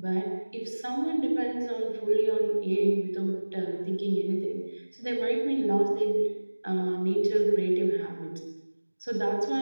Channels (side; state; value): both; inverted; correlation -1.00